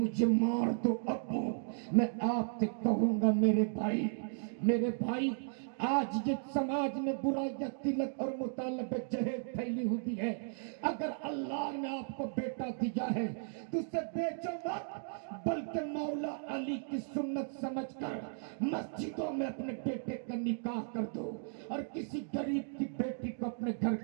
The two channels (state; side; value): silent; left; digital silence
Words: مار دو ابو۔ میں آپ سے کہوں گا میرے بھائی، آج یہ سماج میں برائیاں تلک اور مطالبہ جہیز پھیلی ہوئی ہے، اگر اللہ نے آپ کو بیٹا دیا ہے تو اسے بیچو مت، بلکہ مولا علی کی سنت سمجھ کر مسجدوں میں اپنے بیٹے کا نکاح کر دو، اور کسی غریب کی بیٹی کو اپنے گھر